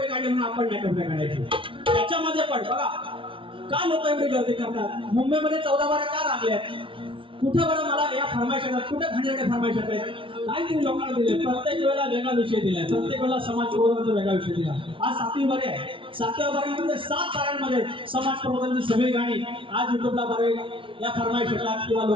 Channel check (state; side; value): late; left; 0.25 ms